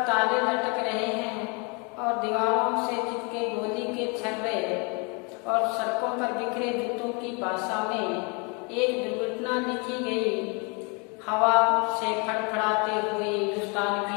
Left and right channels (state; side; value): quieter; right; 32.8 dB